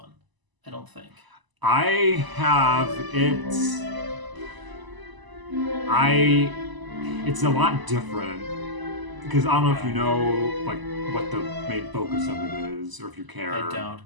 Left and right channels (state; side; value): late; left; 1.0 ms